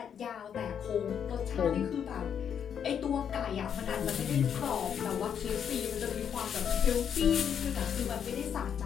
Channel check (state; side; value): quieter; right; 8.1 dB